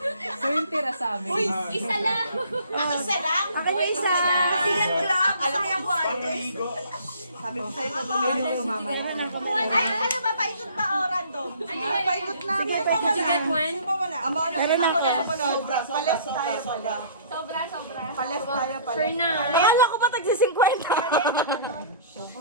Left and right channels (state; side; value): inverted; both; correlation -0.51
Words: So yung tira sa amin. Isa lang! Isa lang? Akin na isa. Tingnan ko lang. Alam mo yung guantes? Sabi ko sa'yo, gagawin ko mamaya. Ay, ano ba? Paikot ba o random? Paikot na. Did you get one? Meron na ako. Pales tayo pala. Sobra. Pales tayo pala. Fernan. Kaya ko pa tagsi 50.